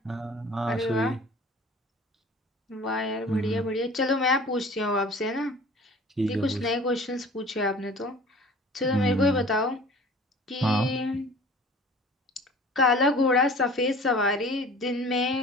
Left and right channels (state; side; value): normal; both; correlation 0.45